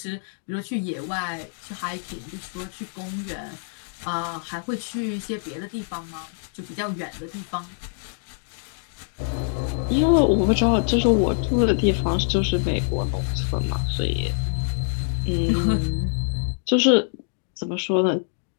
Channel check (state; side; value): silent; right; digital silence